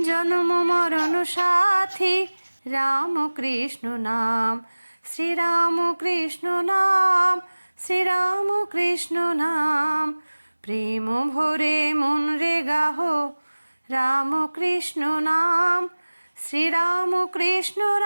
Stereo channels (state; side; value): inverted; both; correlation -1.00